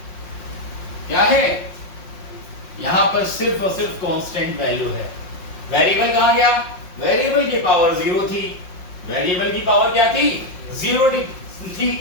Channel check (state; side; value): late; right; 5.6 ms